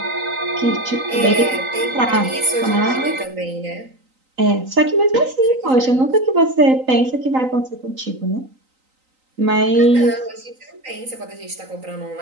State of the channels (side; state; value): left; late; 3.9 ms